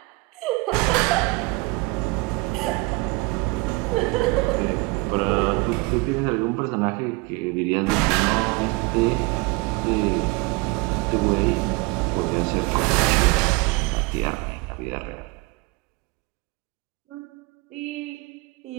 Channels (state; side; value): quieter; left; 24.5 dB